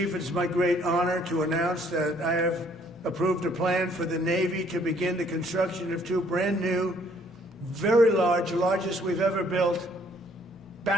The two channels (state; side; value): normal; both; correlation 0.63